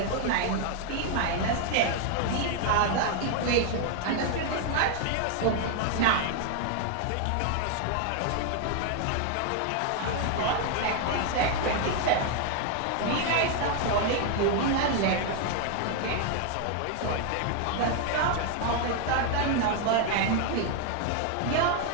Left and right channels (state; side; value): different; both; correlation 0.00